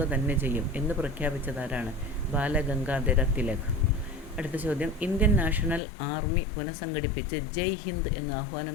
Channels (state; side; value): drops out; right; at 5.8 s